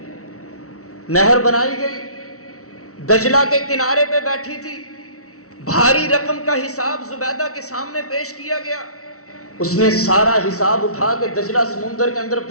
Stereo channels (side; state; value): right; late; 0.64 ms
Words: نہر بنائی گئی، دجلہ کے کنارے پہ بیٹھی تھی، بھاری رقم کا حساب زبیدہ کے سامنے پیش کیا گیا. اس نے سارا حساب اٹھا کے دجلہ سمندر کے اندر